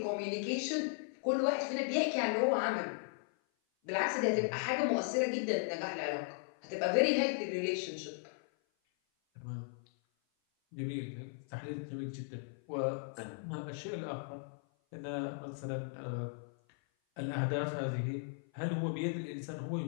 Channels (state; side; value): silent; right; 53 dB below the other